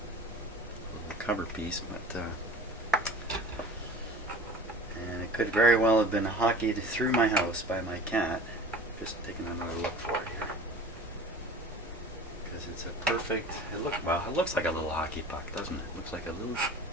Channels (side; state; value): both; normal; correlation 0.40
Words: little cover piece, but and it could very well have been hockeyed through my house by my cat. Just taking another look for it here, because it's a perfect. It looks like a little hockey puck, doesn't it? It looks like a little